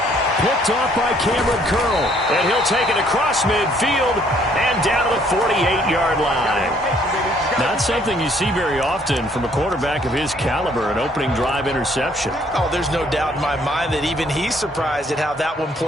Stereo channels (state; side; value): normal; both; correlation 0.64